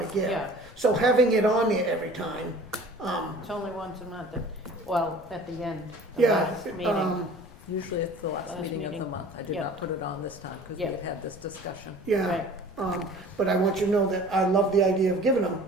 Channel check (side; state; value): left; noise; rumble, 22 dB below the sound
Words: give. Yeah, So having it on there every time, it's only once a month, well, at the end, the yeah, last meeting. Usually it's the last Last meeting of meeting. the month. I did Yeah. not put it on this time because we Yeah. had this discussion. yeah. Right. But I want you to know that I love the idea of giving them.